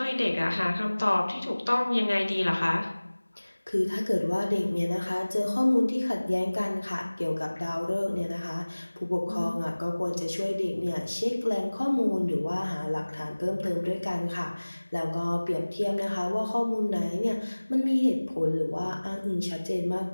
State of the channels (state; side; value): inverted; both; correlation -1.00